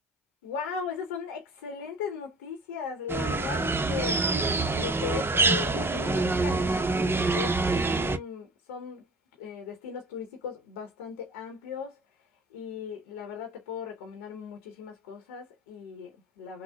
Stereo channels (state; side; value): normal; both; correlation 0.39